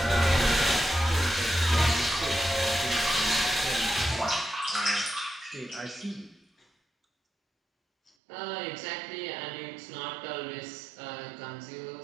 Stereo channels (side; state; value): left; drops out; at 8.1 s